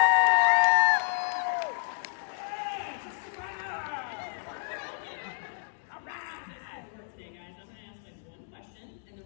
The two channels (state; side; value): silent; right; digital silence